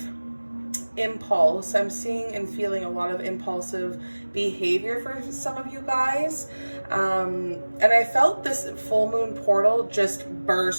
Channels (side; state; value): both; inverted; correlation -1.00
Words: impulse. I'm seeing and feeling a lot of impulsive behavior for some of you guys. And I felt this full moon portal just